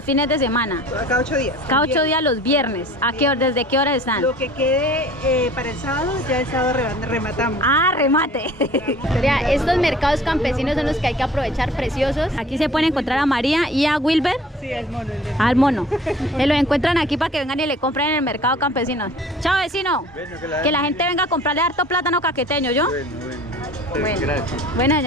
fines de semana. Cada 8 días. Cada 8 días los viernes. ¿A qué hora, desde qué hora están? Lo que quede para el sábado, ya el sábado rematamos. Ah, remate. Vea, estos mercados campesinos son los que hay que aprovechar, preciosos. Aquí se pueden encontrar a María y a Wilber. Sí, al mono. Al mono. Se lo encuentran aquí para que vengan y le compren en el mercado campesino. Chao, vecino. Bueno, que la gente venga a comprarle harto plátano caqueteño, ¿yo? Bueno. Bueno, Gracias. bueno,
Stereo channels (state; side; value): normal; both; correlation 0.48